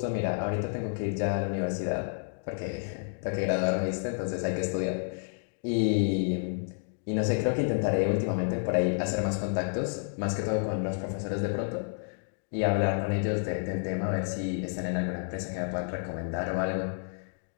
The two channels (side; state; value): right; silent; digital silence